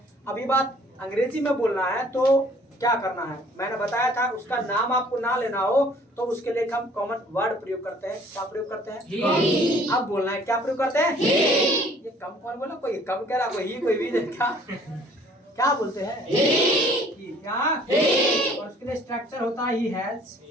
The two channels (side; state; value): both; normal; correlation 0.55